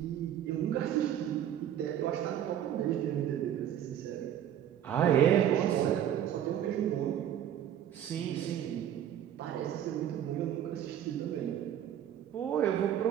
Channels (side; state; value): left; quieter; 10.4 dB